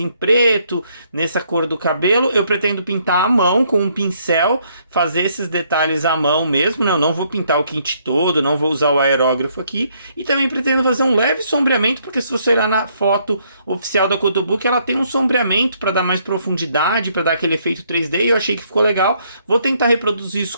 preto, nessa cor do cabelo. Eu pretendo pintar à mão com um pincel, fazer esses detalhes à mão mesmo, né? Eu não vou pintar o kit todo, não vou usar o aerógrafo aqui. E também pretendo fazer um leve sombreamento, porque se você olhar na foto oficial da Kotobuki, ela tem um sombreamento para dar mais profundidade, para dar aquele efeito 3D, e eu achei que ficou legal. Vou tentar reproduzir isso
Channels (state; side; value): inverted; both; correlation -0.69